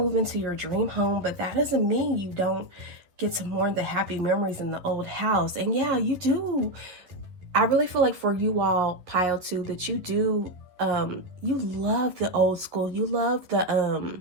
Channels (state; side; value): late; left; 11 ms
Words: into your dream home, but that doesn't mean you don't get to mourn the happy memories in the old house. And yeah, you do. I really feel like for you all, pile 2, that you do, you love the old school. You love the,